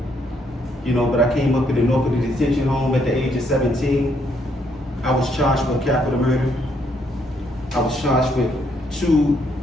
but I came up in the north of the detention home at the age of 17. I was charged with capital murder. I was charged with 2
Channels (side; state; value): both; normal; correlation 0.72